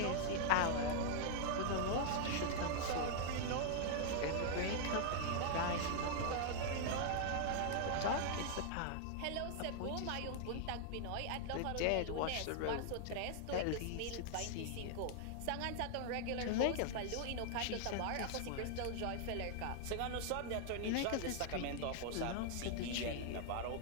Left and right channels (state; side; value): different; both; correlation 0.00